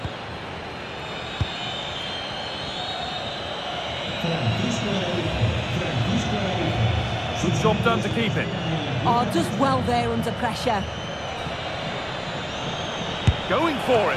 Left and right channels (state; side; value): identical; both; correlation 1.00